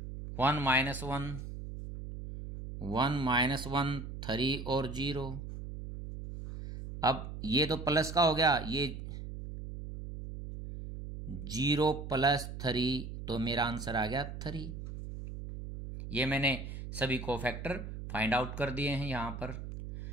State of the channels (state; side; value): noise; right; hum, 9 dB below the sound